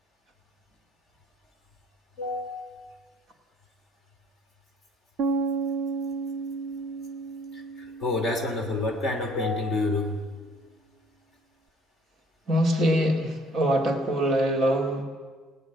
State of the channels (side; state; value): both; normal; correlation 0.58